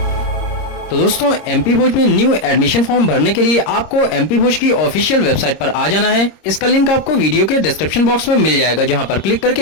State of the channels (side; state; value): right; late; 26 ms